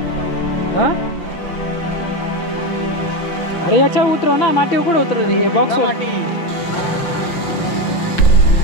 हा अरे याच्या उतरव ना माती कुठं उतरव हे बॉक्स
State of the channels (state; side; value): late; right; 5.7 ms